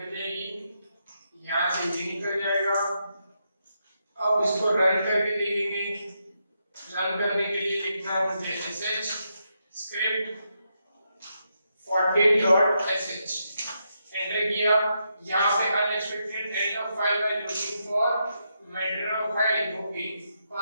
जाएगी, यहाँ से ये निकल जाएगा। अब इसको रन करके देखेंगे। रन करने के लिए लिखना है मुझे sh script 40.sh, एंटर किया। यहाँ पे unexpected end of file by looking for matter of file, okay.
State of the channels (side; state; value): both; inverted; correlation -0.82